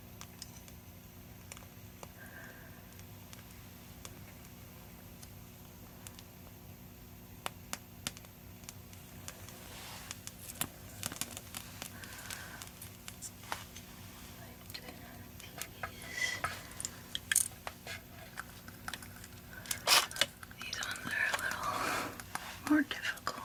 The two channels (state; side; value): identical; both; correlation 1.00